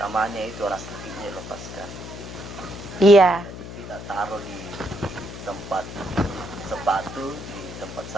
itu rasa sakitnya dilepaskan. Iya. Jadi kita taruh di tempat sepatu, di tempat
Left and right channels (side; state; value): left; noise; hum, 11 dB below the sound